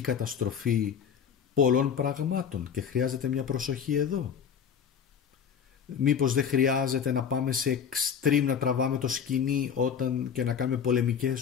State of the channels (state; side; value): quieter; right; 7.5 dB